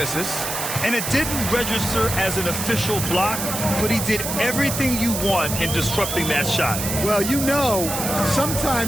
And it didn't register as an official block, but he did everything you want in disrupting that shot. Well, you know,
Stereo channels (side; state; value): right; noise; hiss, 4 dB below the sound